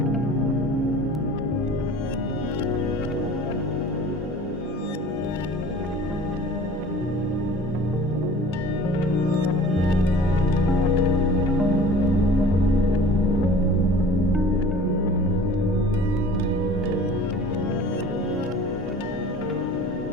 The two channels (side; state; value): both; normal; correlation 0.44